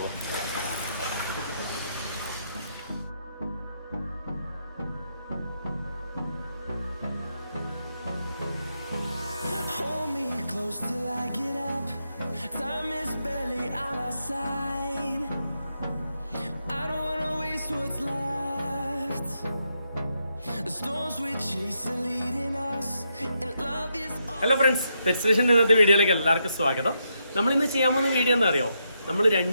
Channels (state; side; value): inverted; both; correlation -0.81